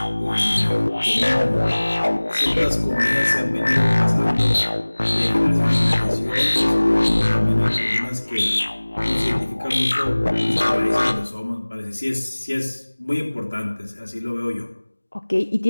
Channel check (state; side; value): inverted; both; correlation -1.00